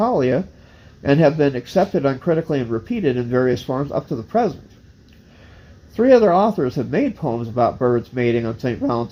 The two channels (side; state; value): both; identical; correlation 1.00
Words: and have been accepted uncritically and repeated in various forms up to the present. 3 other authors have made poems about birds mating on St.